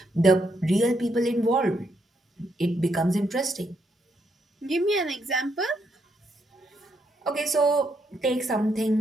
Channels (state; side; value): normal; both; correlation 0.77